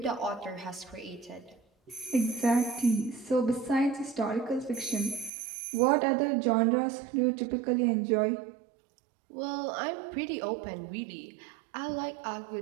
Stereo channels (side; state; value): left; drops out; at 5.3 s